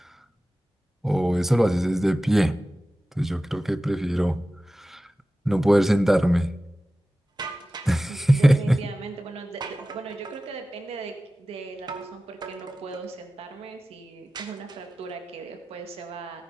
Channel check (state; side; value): normal; both; correlation 0.96